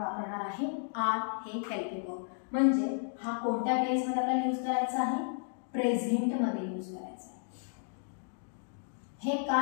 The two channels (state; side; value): silent; right; digital silence